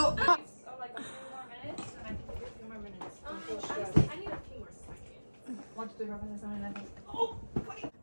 so like a few more minutes and I can give you a few more minutes. I need a few more seconds. 1, 2, 3, 4, 5, 6, 7, 8, 9, 10.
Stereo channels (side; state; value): both; inverted; correlation -1.00